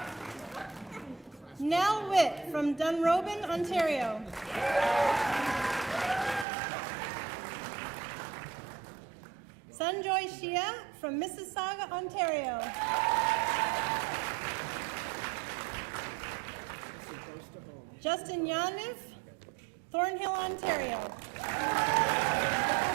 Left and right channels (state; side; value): drops out; left; at 6.5 s